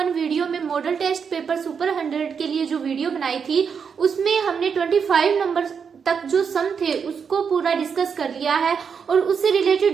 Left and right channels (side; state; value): left; quieter; 6.5 dB